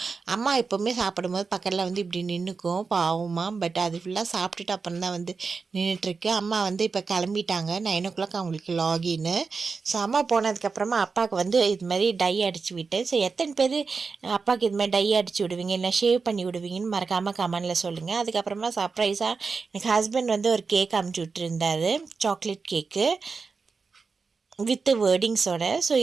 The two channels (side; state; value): left; quieter; 4.8 dB